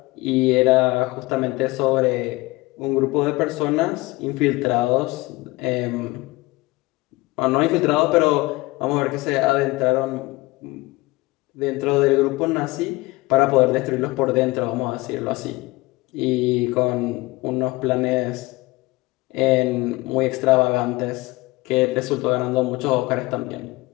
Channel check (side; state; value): right; quieter; 21.6 dB